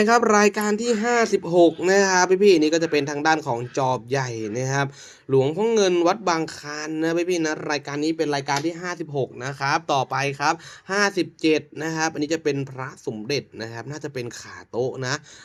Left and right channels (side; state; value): both; identical; correlation 1.00